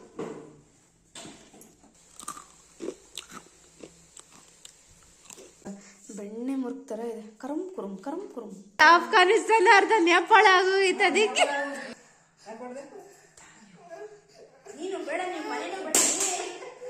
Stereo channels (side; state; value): both; identical; correlation 1.00